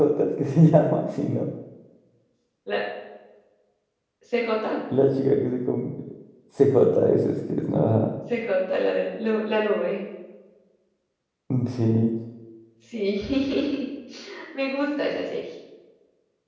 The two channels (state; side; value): identical; both; correlation 1.00